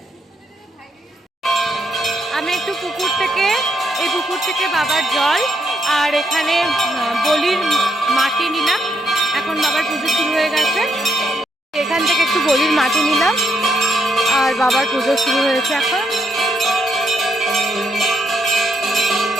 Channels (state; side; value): normal; both; correlation 0.77